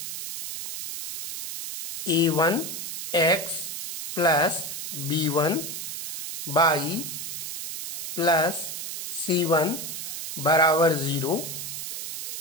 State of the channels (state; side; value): noise; right; hiss, 6 dB below the sound